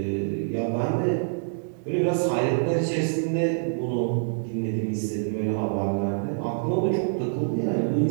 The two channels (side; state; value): left; silent; digital silence